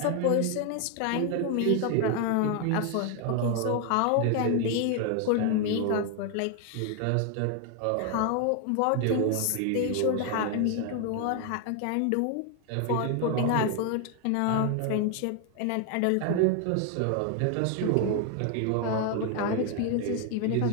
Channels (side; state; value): both; different; correlation 0.01